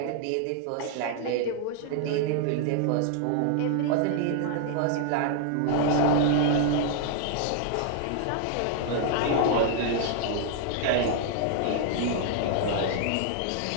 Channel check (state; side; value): different; both; correlation 0.00